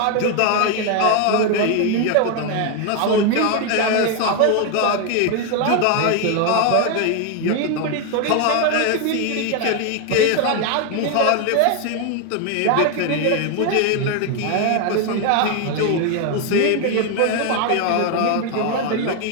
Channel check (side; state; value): both; different; correlation 0.01